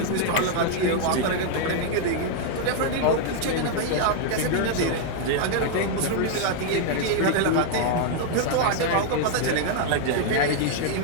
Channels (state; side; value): different; both; correlation 0.00